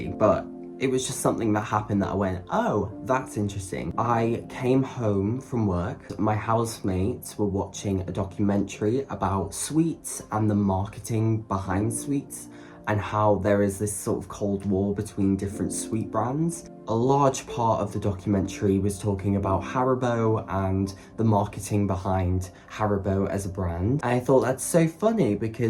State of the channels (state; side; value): identical; both; correlation 1.00